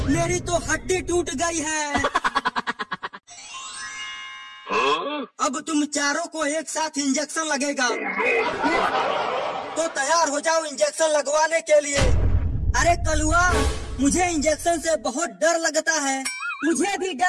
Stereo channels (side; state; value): both; identical; correlation 1.00